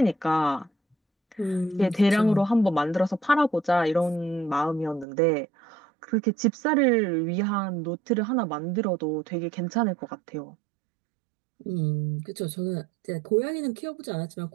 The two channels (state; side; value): drops out; left; at 5.1 s